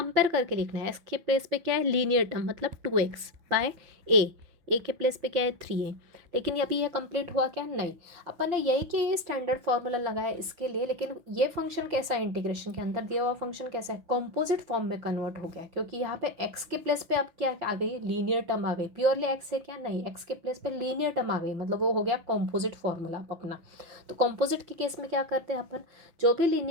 करके लिखना है। एक्स के प्लेस पे क्या है, लीनियर टर्म मतलब 2x बाय ए के प्लेस पे क्या है 3a। लेकिन अभी यह कंप्लीट हुआ क्या, नहीं। अपन ने यही कि ये स्टैंडर्ड फार्मूला लगाया इसके लिए, लेकिन ये फंक्शन कैसा है, इंटीग्रेशन के अंदर दिया हुआ फंक्शन कैसा है, कॉम्पोजिट फॉर्म में कन्वर्ट हो गया, क्योंकि यहाँ पे एक्स के प्लेस पे अब क्या आ गई, लीनियर टर्म आ गई। प्योरली एक्स है क्या, नहीं, एक्स के प्लेस पे लीनियर टर्म आ गई, मतलब वो हो गया कॉम्पोजिट फॉर्मूला अपना। तो कॉम्पोजिट के केस में क्या करते हैं अपन, जो भी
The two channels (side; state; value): left; late; 5.8 ms